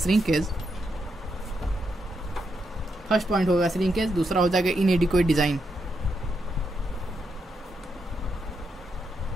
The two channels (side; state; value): both; normal; correlation 0.82